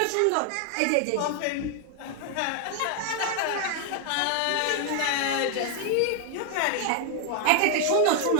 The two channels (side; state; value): both; different; correlation 0.00